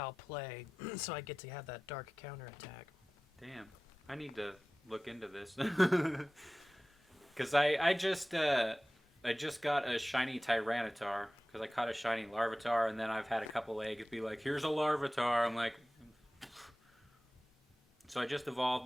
play, so I get to have that dark counter attack. Damn. I need to look into this. Because I just got a shiny Tyranitar, because I caught a shiny Larvitar, and then I've had a couple eggs be like, here's a Larvitar. I'm like... So I just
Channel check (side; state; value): both; normal; correlation 0.97